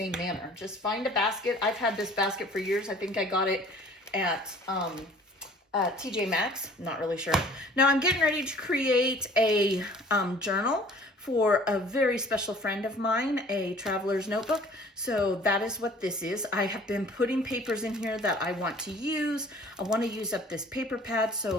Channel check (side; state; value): both; normal; correlation 0.51